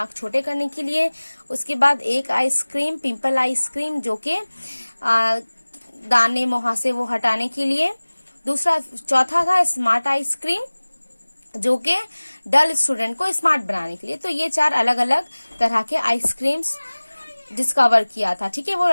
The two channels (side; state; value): both; inverted; correlation -1.00